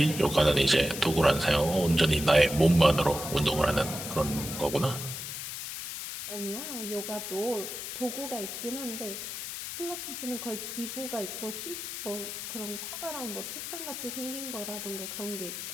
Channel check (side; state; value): left; noise; hiss, 7 dB below the sound